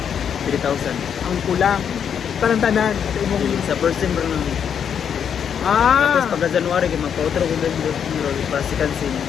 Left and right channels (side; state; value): right; quieter; 8.0 dB